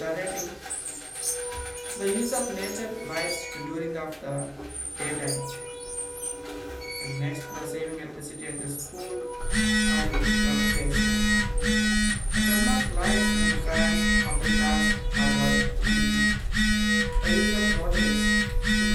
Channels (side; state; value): both; identical; correlation 1.00